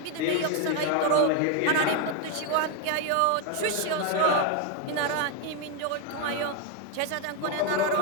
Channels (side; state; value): both; different; correlation 0.01